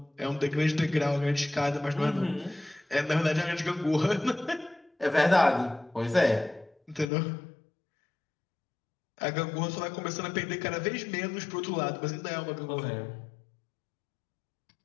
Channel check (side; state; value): right; drops out; at 7.1 s